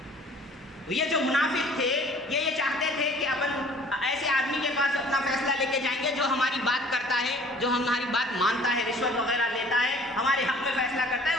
یہ جو منافق تھے یہ چاہتے تھے کہ ایسے آدمی کے پاس اپنا فیصلہ لے کے جائیں گے جو ہماری بات کرتا ہے، جو ہماری بات مانتا ہے، رشوت وغیرہ لیتا ہے، ہمارے حق میں فیصلہ کرتا ہے،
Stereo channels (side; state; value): both; normal; correlation 0.52